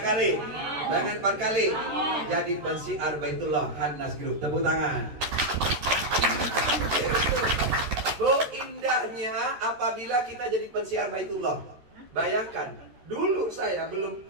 kali? Pengen 4 kali? Jadi pensiar Baitullah Hannas Group. Tepuk tangan. Bu, indahnya apabila kita jadi pensiar Baitullah. Bayangkan, dulu saya belum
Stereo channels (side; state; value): left; late; 14 ms